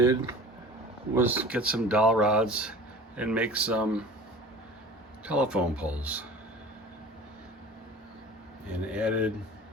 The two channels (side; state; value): both; normal; correlation 0.41